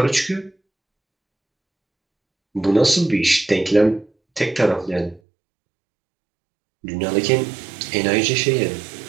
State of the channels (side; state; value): left; drops out; at 5.2 s